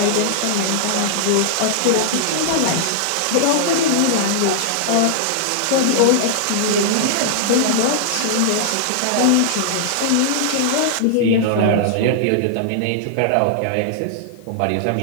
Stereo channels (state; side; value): different; both; correlation -0.01